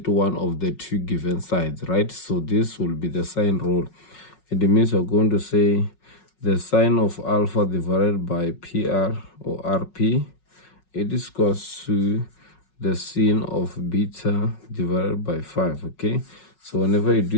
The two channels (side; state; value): right; late; 5.4 ms